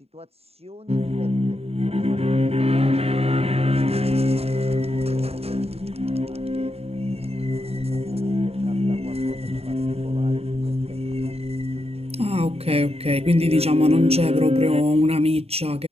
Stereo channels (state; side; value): late; left; 0.29 ms